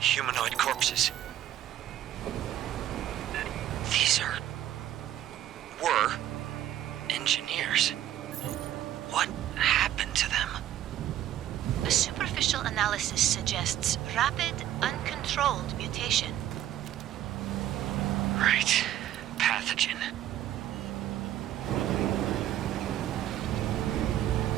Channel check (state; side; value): quieter; left; 12.2 dB